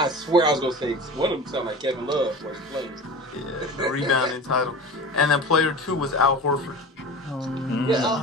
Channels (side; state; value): both; normal; correlation 0.34